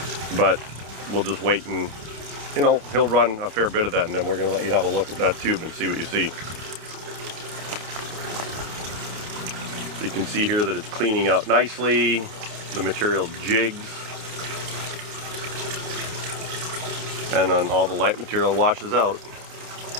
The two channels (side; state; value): left; late; 29 ms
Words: but we'll just wait, and he'll run a fair bit of that, and then we're going to let you have a look at that tube and see what you see. You can see here that it's cleaning out nicely. The material jigs, and then all the light material washes out.